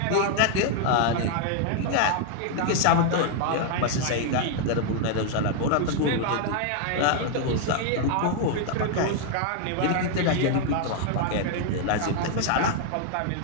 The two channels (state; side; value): different; both; correlation 0.00